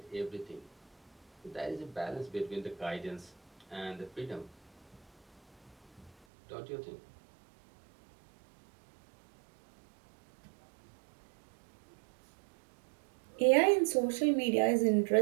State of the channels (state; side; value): drops out; left; at 6.2 s